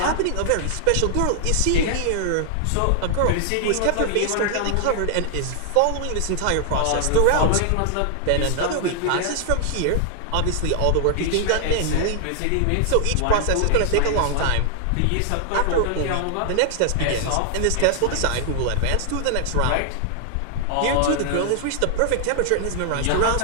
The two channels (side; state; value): both; different; correlation 0.00